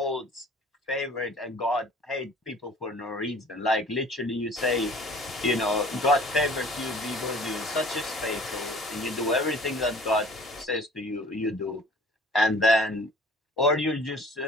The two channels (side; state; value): both; normal; correlation 0.49